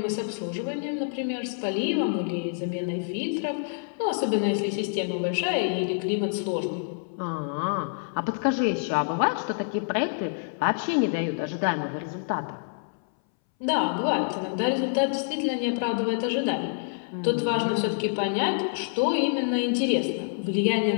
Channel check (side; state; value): right; silent; 60 dB below the other